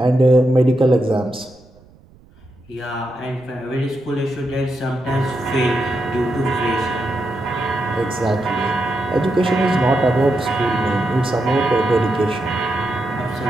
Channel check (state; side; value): noise; right; rumble, 27 dB below the sound